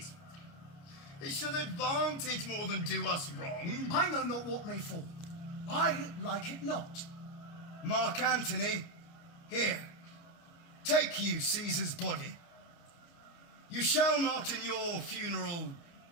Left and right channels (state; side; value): late; right; 29 ms